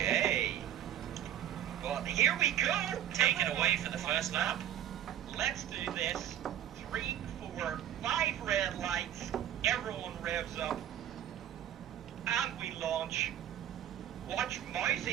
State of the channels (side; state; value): left; quieter; 11.1 dB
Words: Well, here we go. Taken away for the first lap. Let's do this. 3, 4, 5 red lights. Everyone revs up. And we launch. Watch